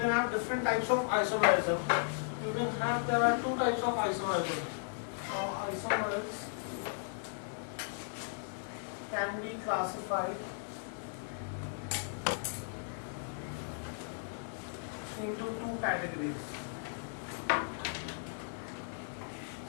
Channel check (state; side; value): silent; right; digital silence